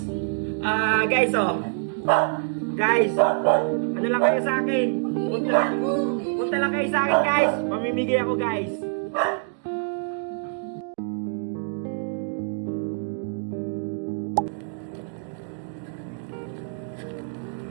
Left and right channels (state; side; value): silent; left; digital silence